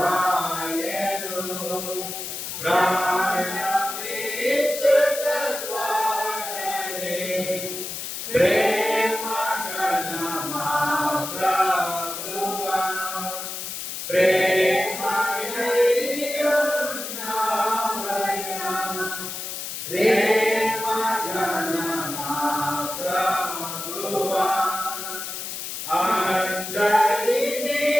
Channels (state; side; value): noise; left; hiss, 6 dB below the sound